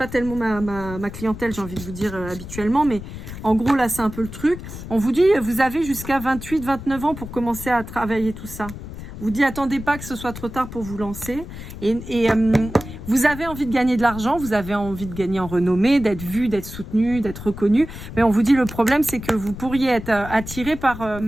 tellement ma clientèle, j'ai envie de vous dire habituellement, mais en gros là c'est un peu le truc. On vous dit, vous avez jusqu'à 28-29 ans pour commencer à travailler tout ça. On vous dit, attendez pas que ce soit trop tard pour vous lancer. Et vous avez envie de gagner de l'argent, vous avez envie de gagner en renommée, d'être vu, d'être soutenu, d'être reconnu. Mais on vous dit, le problème c'est que vous pourriez être attiré par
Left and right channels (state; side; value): noise; left; rumble, 11 dB below the sound